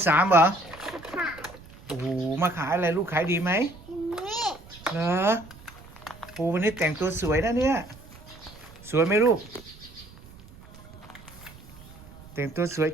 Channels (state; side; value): noise; right; rumble, 20 dB below the sound